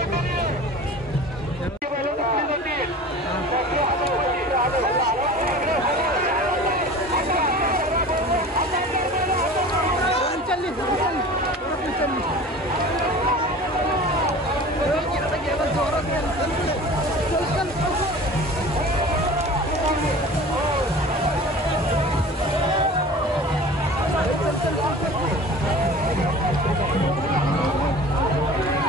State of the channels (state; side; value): normal; both; correlation 0.39